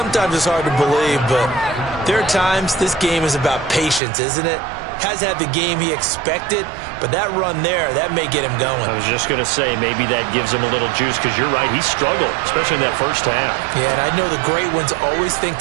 it's hard to believe, but there are times this game is about patience, isn't it? Has had the game he expected, but that run there, that may get him going. I was just going to say, maybe that gives him a little juice, because you're right, he struggled, especially in that first half. Yeah, and I know the great ones always think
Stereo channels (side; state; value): left; drops out; at 4.0 s